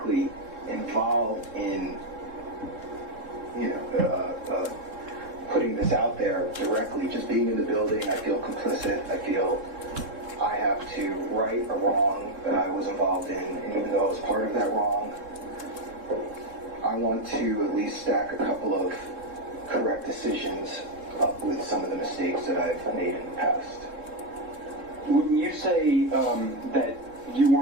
involved in, putting this out there directly, just being in the building, I feel complicit. I feel I have to right a wrong that I was involved in, and even though I was part of that wrong, I want to at least stack a couple of correct decisions up with some of the mistakes that I've made in the past. When you say that you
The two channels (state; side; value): late; left; 3.7 ms